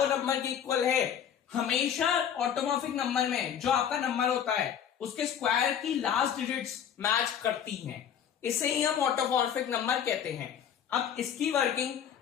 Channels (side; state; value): right; quieter; 8.8 dB